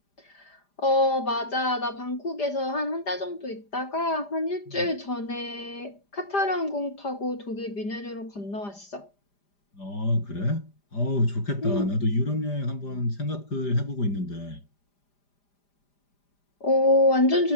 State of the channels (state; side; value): late; right; 5.0 ms